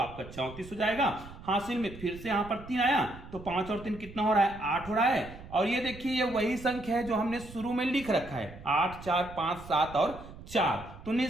34 हो जाएगा। हासिल में फिर से यहां पर 3 आया, तो 5 और 3 कितना हो रहा है? 8 हो रहा है। और ये देखिए ये वही संख्या है जो हमने शुरू में लिख रखा है, 8 4 5 7 और 4। तो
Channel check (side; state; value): right; noise; rumble, 16 dB below the sound